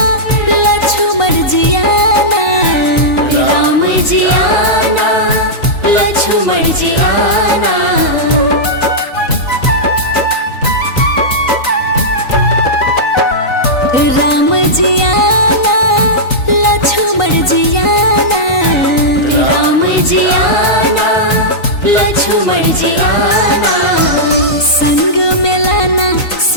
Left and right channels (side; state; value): right; late; 3.9 ms